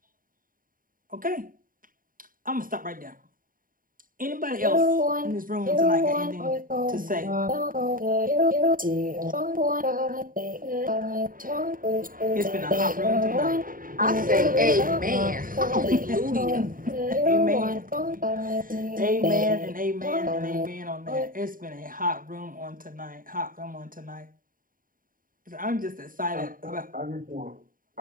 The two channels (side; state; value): left; late; 0.40 ms